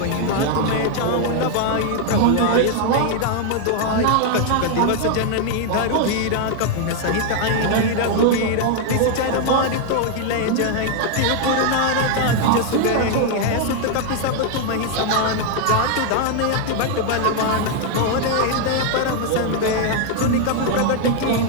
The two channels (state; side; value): different; both; correlation 0.00